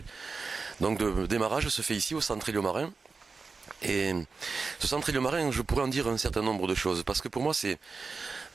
Donc le démarrage se fait ici au centre Éliomarin. Et ce centre Éliomarin, je pourrais en dire un certain nombre de choses, parce que pour moi c'est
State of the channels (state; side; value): quieter; left; 4.5 dB